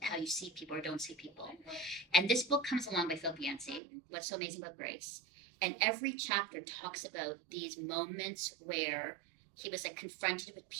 how you see people or don't see people. And this book comes along by Philip Yancey, What's So Amazing About Grace. And every chapter talks about these moments where he was like confronted with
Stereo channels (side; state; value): left; drops out; at 3.8 s